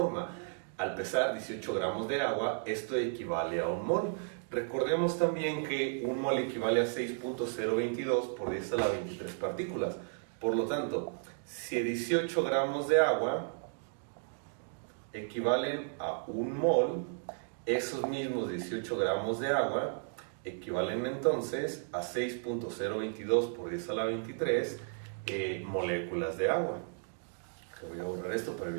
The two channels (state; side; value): silent; left; digital silence